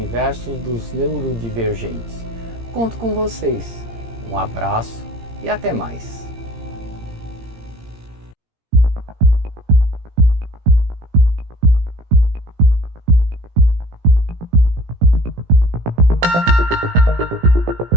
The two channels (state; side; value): late; left; 17 ms